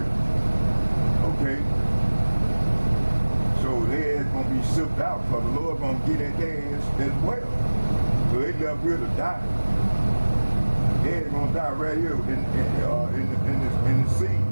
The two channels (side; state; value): both; inverted; correlation -1.00